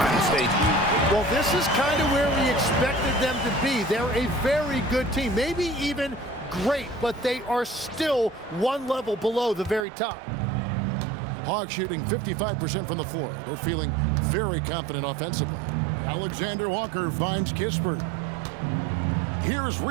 stages. Well, this is kind of where we expected them to be. They're a very good team, maybe even great, but they are still one level below the very top. Hawks shooting 55% from the floor. They're feeling very confident offensively. Alexander Walker finds Kispert. Here's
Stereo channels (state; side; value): drops out; left; at 9.9 s